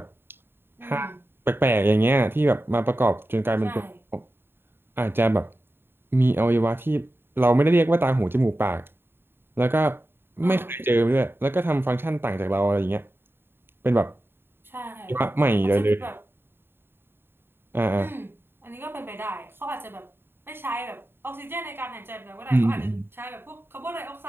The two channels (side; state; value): left; late; 0.11 ms